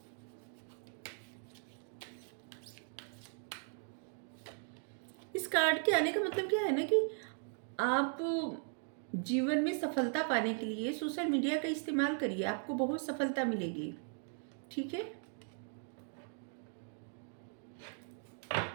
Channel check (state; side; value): silent; left; 52 dB below the other